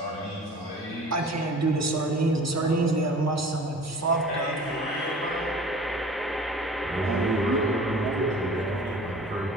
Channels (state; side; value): normal; both; correlation 0.44